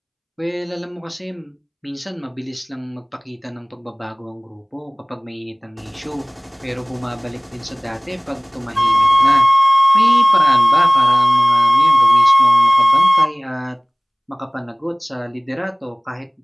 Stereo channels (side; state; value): both; identical; correlation 1.00